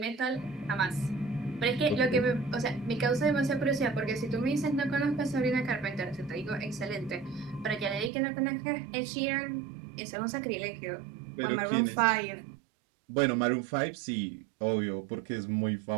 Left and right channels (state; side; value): drops out; left; at 8.1 s